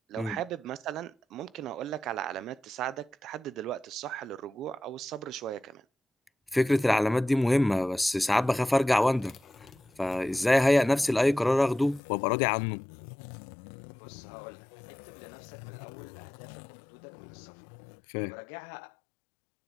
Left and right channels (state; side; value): drops out; right; at 12.0 s